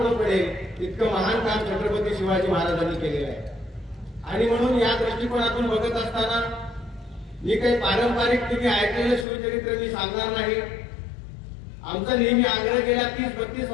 पडेल इतकं महान काम छत्रपती शिवाजी महाराजांनी केलेलं आहे। आणि म्हणून या दृष्टिकोनातून बघत असताना मी काही पारंपरिक तुम्ही ऐकलेलं शिवचरित्र मी सांगणार नाही। आमचा नेहमी आग्रह गेल्या 30-32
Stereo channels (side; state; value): right; drops out; at 9.2 s